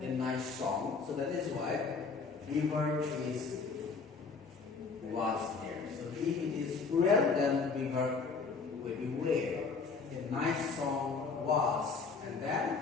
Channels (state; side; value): quieter; right; 4.8 dB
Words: a nice song. So that is why the verb is was here. So if it is plural, then the verb will be were. A nice song was, and